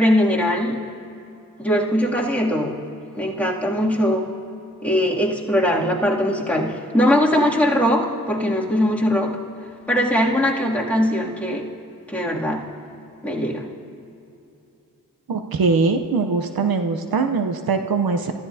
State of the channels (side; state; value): both; normal; correlation 0.57